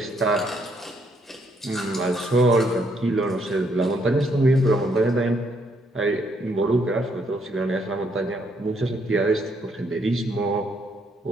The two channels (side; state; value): both; normal; correlation 0.72